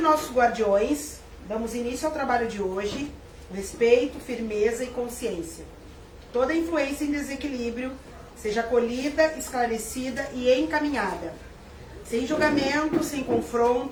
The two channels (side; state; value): both; identical; correlation 1.00